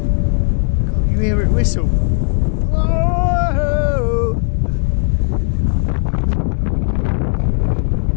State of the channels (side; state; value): right; silent; digital silence